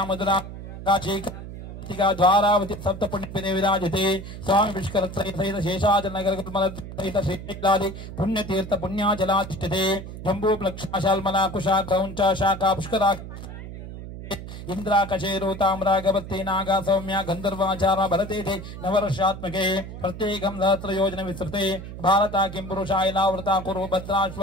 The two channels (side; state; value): right; noise; hum, 11 dB below the sound